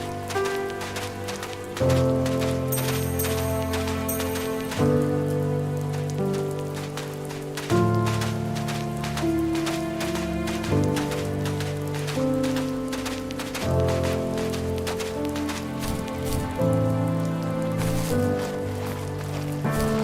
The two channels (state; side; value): identical; both; correlation 1.00